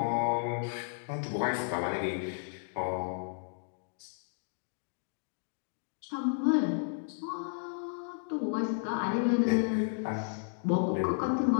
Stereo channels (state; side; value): silent; right; digital silence